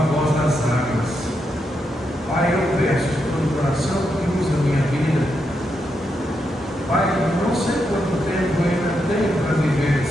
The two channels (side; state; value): both; normal; correlation 0.83